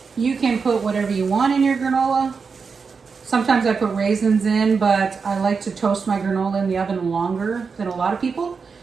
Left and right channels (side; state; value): left; quieter; 5.3 dB